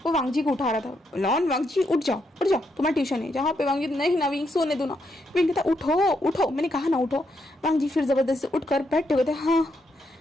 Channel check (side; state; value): both; normal; correlation 0.79